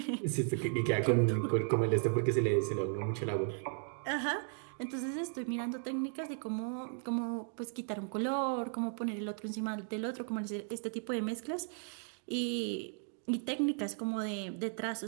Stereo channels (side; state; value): left; silent; 54 dB below the other